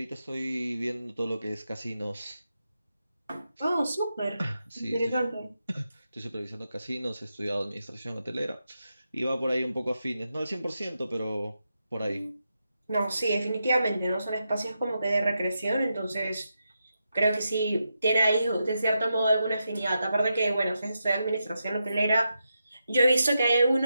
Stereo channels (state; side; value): inverted; both; correlation -0.86